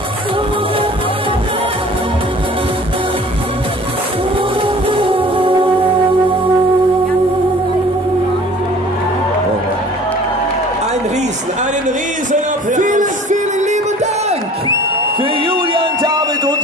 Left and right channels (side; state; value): both; normal; correlation 0.48